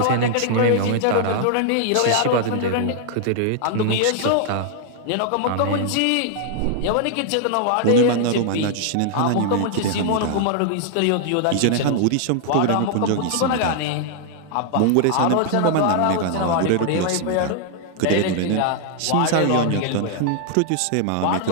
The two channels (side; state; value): both; different; correlation 0.00